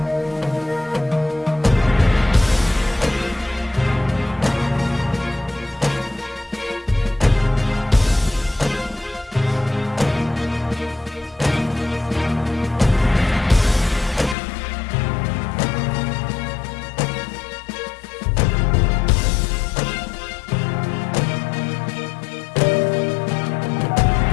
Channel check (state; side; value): drops out; right; at 14.4 s